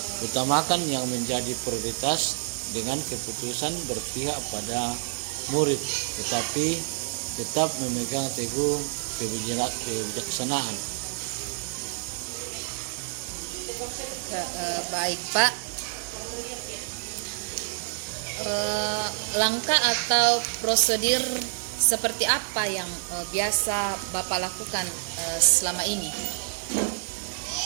Utamakan yang menjadi prioritas dengan keputusan berpihak pada murid, tetapi tetap memegang teguh kebijaksanaan. Baik Pak. Langkah atau prosedur seperti apa yang biasa Bapak lakukan selama ini?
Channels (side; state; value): left; silent; digital silence